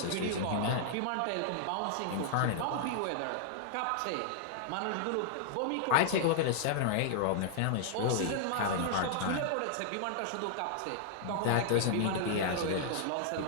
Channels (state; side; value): different; both; correlation -0.01